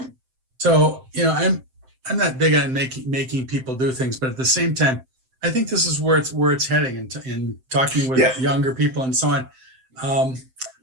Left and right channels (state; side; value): late; left; 7.7 ms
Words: So, I'm not big on making people do things, but at the same time, I think this is where it's heading. In talking with younger people and so on,